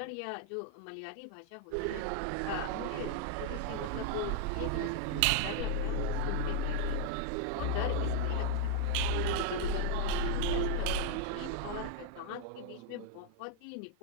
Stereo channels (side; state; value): both; different; correlation 0.00